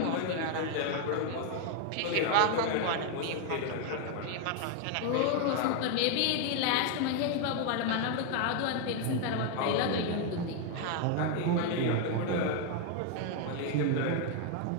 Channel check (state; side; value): different; both; correlation 0.01